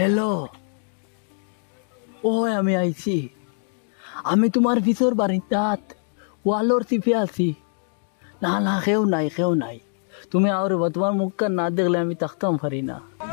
হ্যালো ওই আমি আইছি আমি তোমার ভিতর বাড়িটাত ওয়ালোর চিপে আছি না না কেউ নাই তুমি আর তোমার মুখটা না দেখলে আমি থাকতাম পারি না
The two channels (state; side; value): silent; right; 63 dB below the other